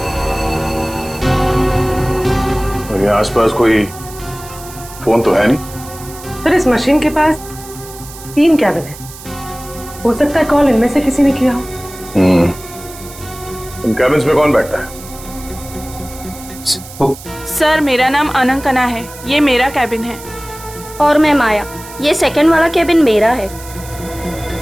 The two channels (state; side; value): noise; right; hiss, 16 dB below the sound